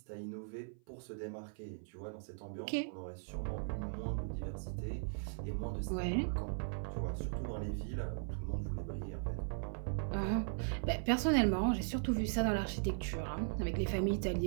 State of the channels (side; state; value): left; silent; 52 dB below the other